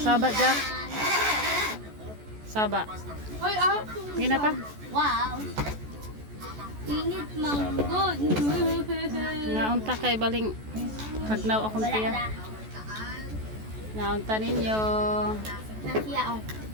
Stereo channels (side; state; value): left; late; 14 ms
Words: Jack. Saba. Hoy, Gina pa. wow. Init manggod. Naunta kay baling pagnaw akong tiya. Naunta ninyo. Nasiya oh.